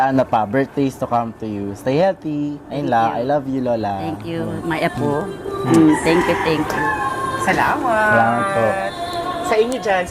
birthdays to come to you. Stay healthy. Ayun lang. I love you, Lola. Thank you, my apo. Thank you. Salamat. Salamat po. Sa inyo dyan,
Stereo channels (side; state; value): both; identical; correlation 1.00